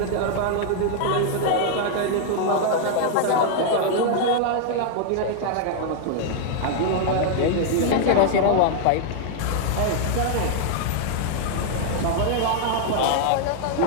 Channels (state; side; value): different; both; correlation -0.01